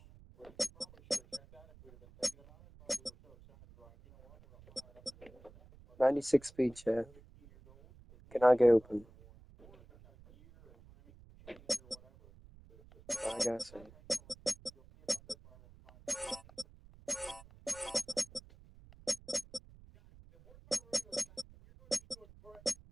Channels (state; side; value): noise; right; rumble, 23 dB below the sound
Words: .96 speed, chat. Cannot get open. I gotta say.